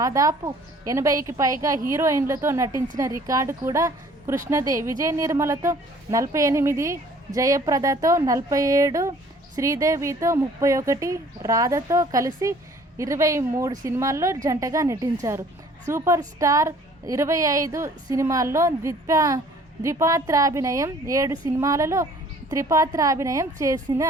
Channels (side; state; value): both; normal; correlation 0.54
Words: 80కి పైగా హీరోయిన్లతో నటించిన రికార్డు కూడా కృష్ణదే. విజయ నిర్మలతో 48, జయప్రదతో 47, శ్రీదేవితో 31, రాధతో కలిసి 23 సినిమాల్లో జంటగా నటించారు. సూపర్ స్టార్ 25 సినిమాల్లో ద్విపాత్రాభినయం, 7 సినిమాలలో త్రిపాత్రాభినయం చేసిన